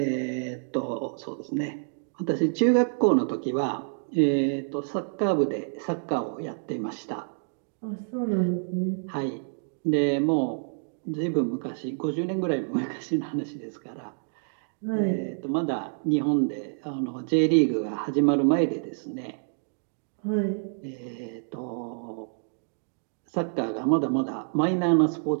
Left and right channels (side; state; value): left; silent; digital silence